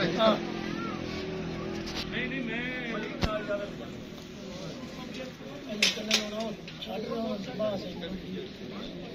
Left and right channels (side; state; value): both; identical; correlation 1.00